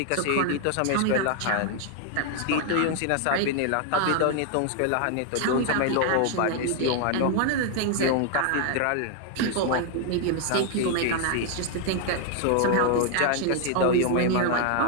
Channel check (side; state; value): both; different; correlation 0.00